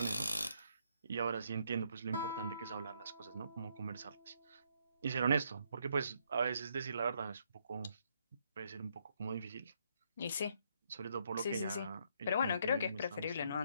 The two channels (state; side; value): inverted; both; correlation -0.72